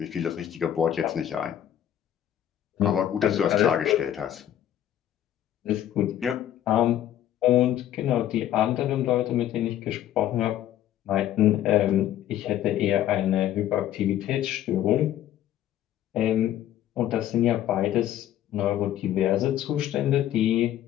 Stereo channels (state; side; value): quieter; right; 11.6 dB